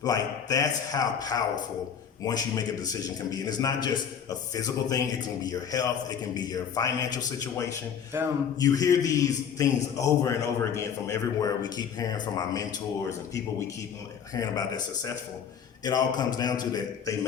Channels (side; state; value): right; quieter; 7.8 dB